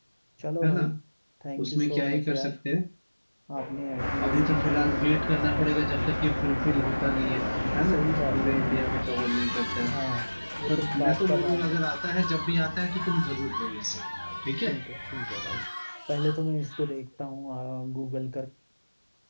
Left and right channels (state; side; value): inverted; both; correlation -1.00